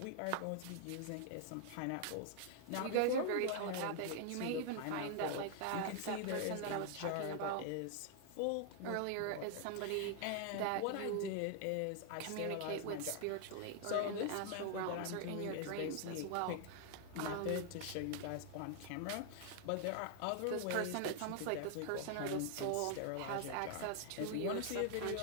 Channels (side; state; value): both; different; correlation 0.00